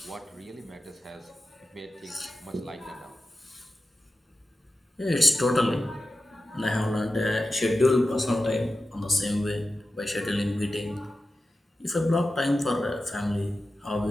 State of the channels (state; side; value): normal; both; correlation 0.93